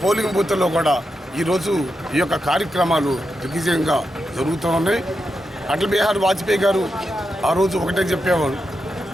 పోలింగ్ బూత్లో కూడా ఈరోజు ఈ యొక్క కార్యక్రమాలు దిగ్విజయంగా జరుగుతూ ఉన్నాయి. అటల్ బిహారీ వాజ్పేయి గారు ఆ రోజు ఒకటే చెప్పేవారు,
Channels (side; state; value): both; normal; correlation 0.87